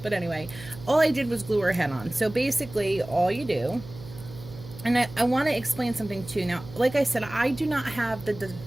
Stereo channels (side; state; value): right; noise; hum, 16 dB below the sound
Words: but anyway, all I did was glue her head on. So basically all you do, and I want to explain something too. Now, like I said, I do not have the